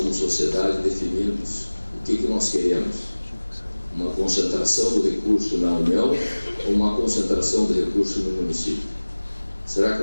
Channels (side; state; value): both; inverted; correlation -1.00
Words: sociedade, definirmos o que nós queremos. Uma concentração do recurso na União ou uma concentração do recurso no município? Será que